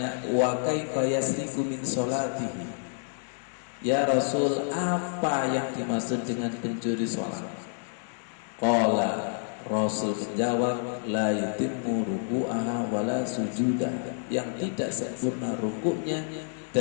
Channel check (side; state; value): right; silent; digital silence